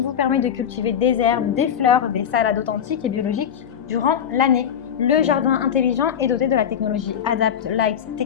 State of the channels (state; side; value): quieter; right; 8.6 dB